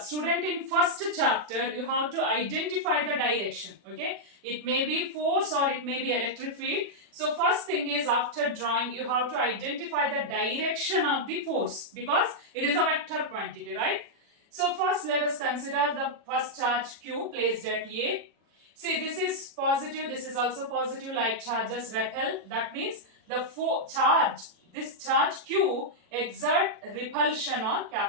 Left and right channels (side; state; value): left; late; 40 ms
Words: in first chapter you have to identify the direction. Okay, it may be force or it may be electric field. So first thing is, after drawing you have to identify the direction of the force, because it is a vector quantity, right? So first let us consider the first charge Q placed at A. See, this is positive, this is also positive, like charges repel. That means the this charge Q exert repulsion on